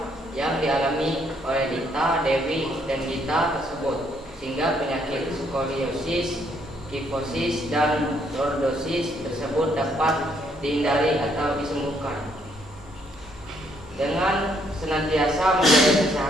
yang dialami oleh Dita, Dewi, dan Gita tersebut, sehingga penyakit skoliosis, kifosis, dan lordosis tersebut dapat dihindari atau disembuhkan. Dengan senantiasa menjaga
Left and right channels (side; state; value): both; normal; correlation 0.70